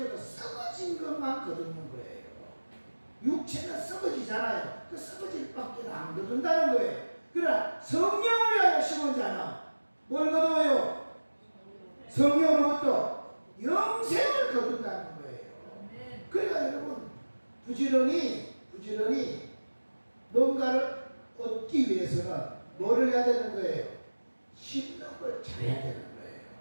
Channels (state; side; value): inverted; both; correlation -1.00